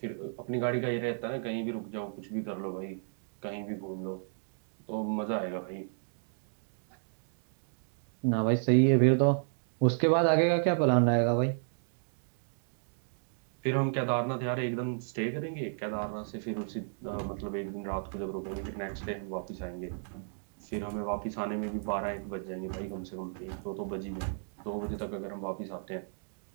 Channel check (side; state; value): left; silent; digital silence